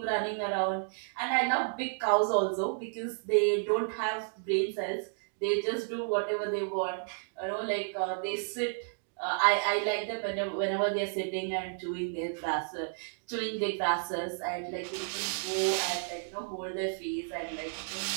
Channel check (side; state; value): left; silent; digital silence